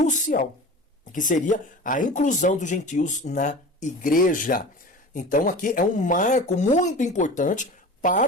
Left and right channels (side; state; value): both; normal; correlation 0.36